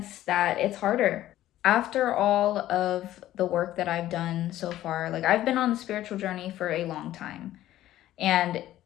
that it's harder. After all of the work that I've done so far, like I've been on the spiritual journey for a long time, and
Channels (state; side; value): quieter; right; 13.8 dB